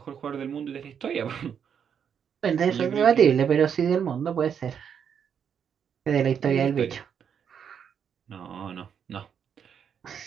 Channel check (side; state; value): left; quieter; 7.8 dB